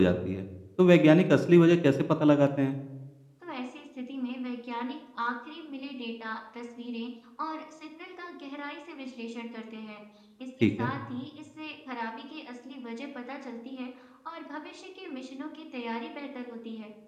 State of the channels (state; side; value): identical; both; correlation 1.00